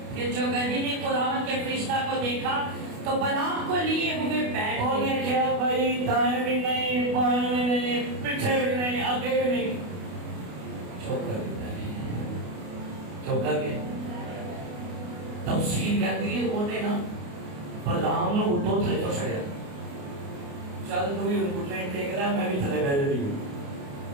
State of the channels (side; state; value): left; late; 28 ms